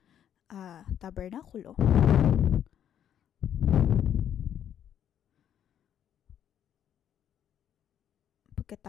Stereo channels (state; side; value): quieter; right; 9.8 dB